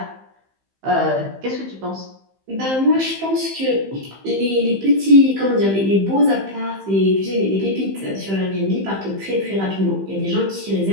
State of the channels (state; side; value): late; left; 15 ms